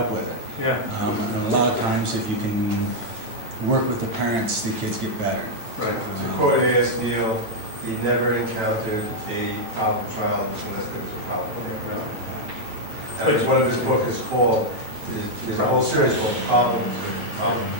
with it. Yeah. And a lot of times if you can work with the parents, the kids get better. Right. To quote A.S. Neal, he never encountered a problem child unless there was a problem. As one of his books is called, there's a whole series called Problems. There's problem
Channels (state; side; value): late; left; 9.0 ms